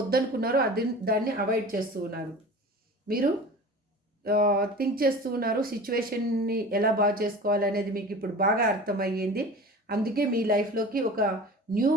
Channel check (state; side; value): normal; both; correlation 0.37